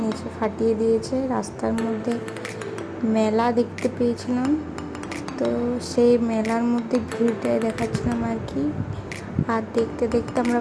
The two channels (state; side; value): identical; both; correlation 1.00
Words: নিচে ফাটিয়ে দিয়েছে, রাস্তার মধ্যে মেলা দেখতে পেয়েছিলাম। তো সেই মেলার মধ্যে ভিড়টাই দেখাচ্ছিলাম আর কি। আর দেখতে দেখতে